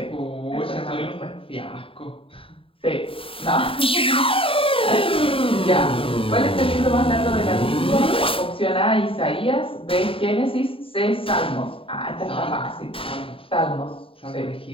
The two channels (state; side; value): late; right; 0.26 ms